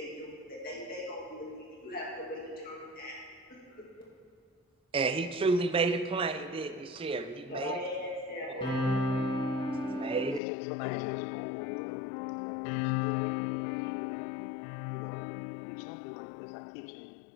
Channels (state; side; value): drops out; right; at 10.4 s